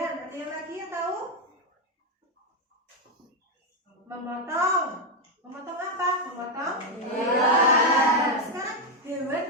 ada yang lagi yang tahu? Memotong. Memotong apa? Memotong Hewan. Sekarang hewan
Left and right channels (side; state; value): both; normal; correlation 0.04